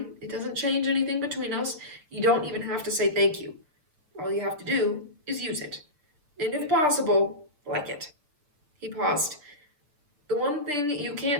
it doesn't change anything between us. You don't even have to say thank you. All you have to do is use it. And if possible, like it. He paused. The one thing you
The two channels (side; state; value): left; late; 6.7 ms